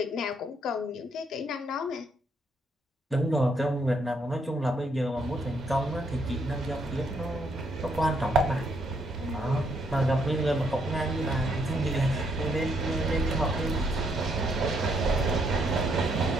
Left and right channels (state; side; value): normal; both; correlation 0.72